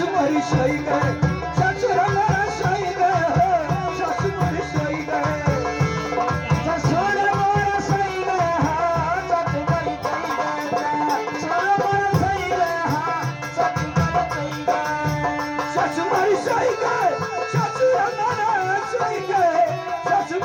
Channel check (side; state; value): both; identical; correlation 1.00